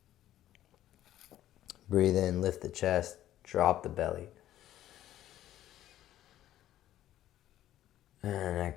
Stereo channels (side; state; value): right; quieter; 13.0 dB